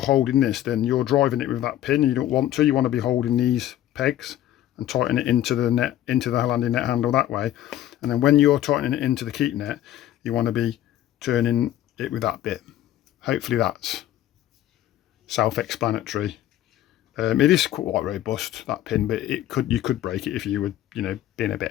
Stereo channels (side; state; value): right; quieter; 12.8 dB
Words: this, then you're driving it with that pin, and you don't want to. You want to be holding these pegs and tighten it into the net, into the landing net handle that way. And then when you're tightening it into the keep net, you want to be turning it with that bit. Hopefully that's self-explanatory. It is quite robust, that pin, but you could break it if you were, you know, being a